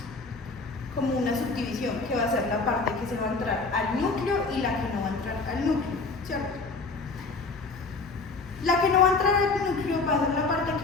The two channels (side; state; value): right; quieter; 3.9 dB